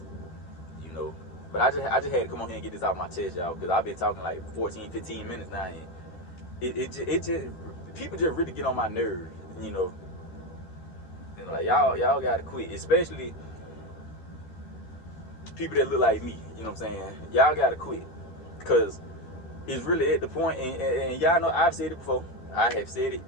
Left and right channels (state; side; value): late; right; 13 ms